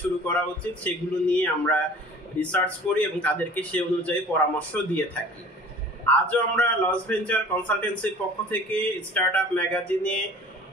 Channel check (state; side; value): normal; both; correlation 0.46